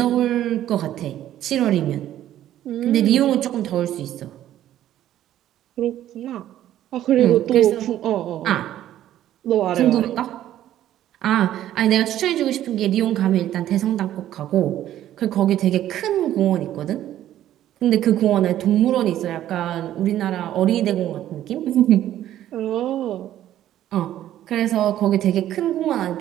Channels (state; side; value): quieter; left; 12.4 dB